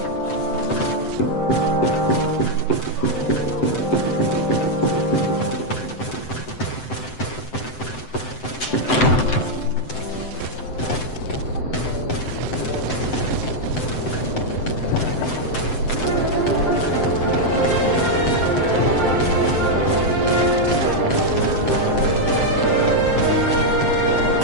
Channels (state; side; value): late; right; 7.8 ms